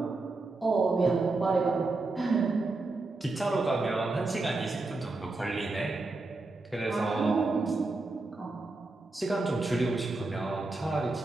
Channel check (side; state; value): left; quieter; 3.3 dB